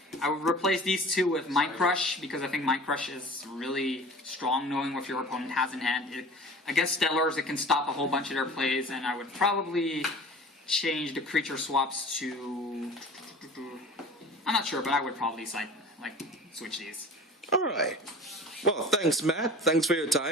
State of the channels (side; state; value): both; normal; correlation 0.41